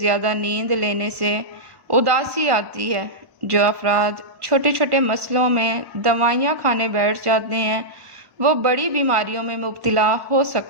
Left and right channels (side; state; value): left; late; 1.1 ms